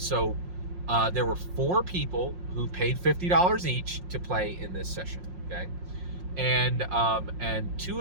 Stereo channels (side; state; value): left; late; 5.6 ms